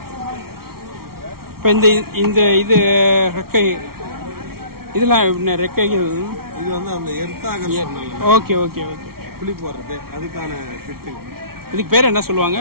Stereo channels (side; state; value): left; late; 0.94 ms